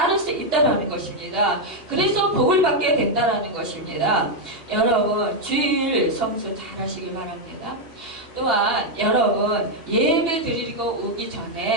수 있다는 것입니다. 그래서 복을 받게 된다는 것입니다. 여러분 주일 성수 잘하시길 바랍니다. 또한 여러분 예배 드리고 오기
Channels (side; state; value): left; late; 2.8 ms